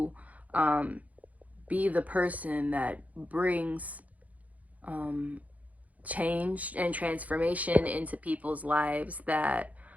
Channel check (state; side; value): late; left; 0.073 ms